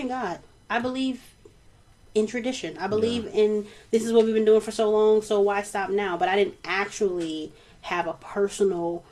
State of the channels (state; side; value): identical; both; correlation 1.00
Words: God. I believe in tradition. I believe in this is what we've been doing for so long, so why stop now? But I didn't actually have a personal